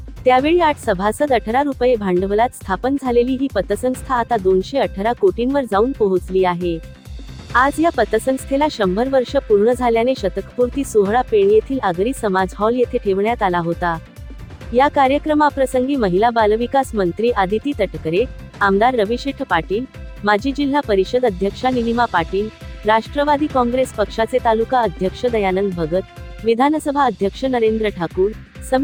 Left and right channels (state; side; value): identical; both; correlation 1.00